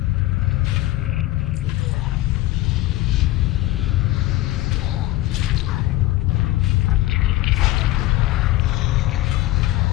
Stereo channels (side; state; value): right; quieter; 16.6 dB